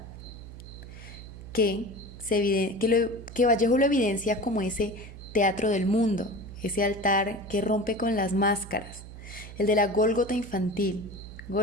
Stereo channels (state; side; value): noise; right; hum, 14 dB below the sound